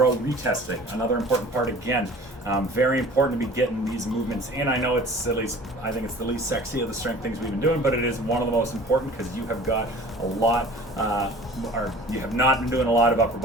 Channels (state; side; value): normal; both; correlation 0.45